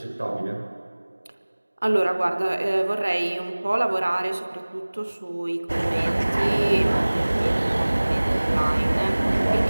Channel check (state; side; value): inverted; both; correlation -1.00